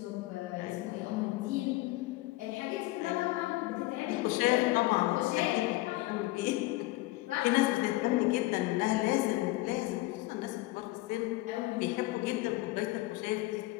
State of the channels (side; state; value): right; quieter; 19.6 dB